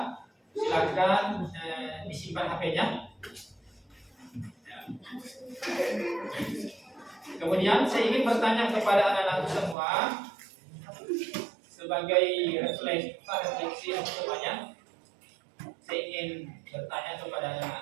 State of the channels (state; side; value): drops out; left; at 9.8 s